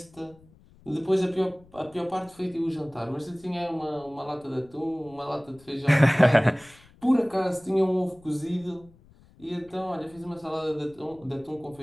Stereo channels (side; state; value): left; noise; rumble, 26 dB below the sound